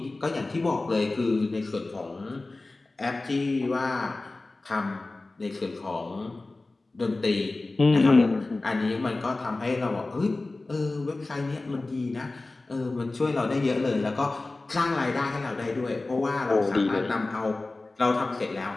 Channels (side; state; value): right; quieter; 3.2 dB